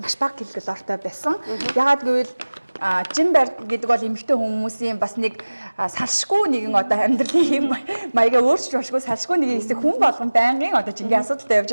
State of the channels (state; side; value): inverted; both; correlation -1.00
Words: бага килокалортой байсан. Ягаад гэвэл жин барь гэдэг бол эмэгтэй хүмүүсийн бас нэг салшгүй нэгэн одоо амьдралын маягаа өөрчилж болшгүй салшгүй нэг хэсэг хүн болгон байнгын одоо жингийн асуудалтай